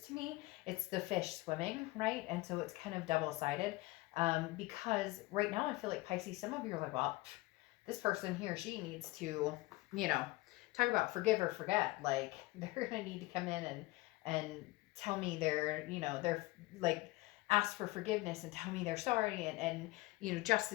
to me, it's the fish swimming, right? And so it's kind of double-sided, because right now I feel like, Pisces, some of you are like, well, this person, he or she, needs to, talk about forgive or forget. Like, they're gonna need to come in and tell me they're like, ask for forgiveness and tell me they're sorry, and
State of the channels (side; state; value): right; quieter; 21.1 dB